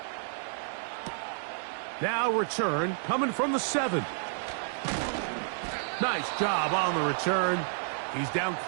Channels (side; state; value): left; silent; digital silence